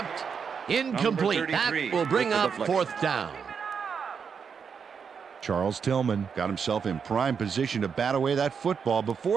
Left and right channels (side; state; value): left; quieter; 6.4 dB